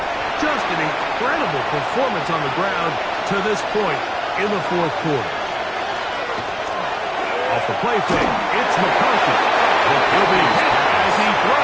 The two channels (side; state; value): both; identical; correlation 1.00